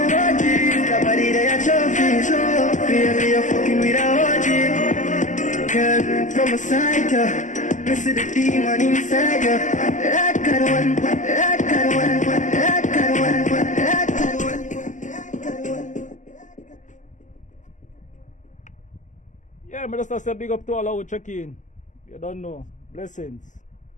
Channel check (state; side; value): late; right; 0.36 ms